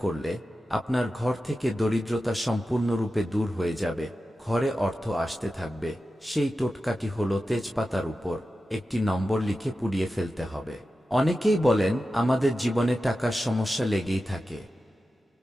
করলে আপনার ঘর থেকে দরিদ্রতা সম্পূর্ণরূপে দূর হয়ে যাবে, ঘরে অর্থ আসতে থাকবে। সেই টোটকাটি হলো তেজপাতার উপর একটি নম্বর লিখে পুড়িয়ে ফেলতে হবে। অনেকেই বলেন আমাদের জীবনে টাকার সমস্যা লেগেই থাকে,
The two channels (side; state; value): both; normal; correlation 0.92